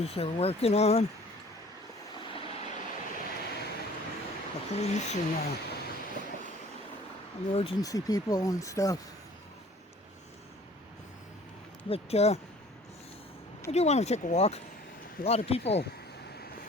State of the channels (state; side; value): normal; both; correlation 0.51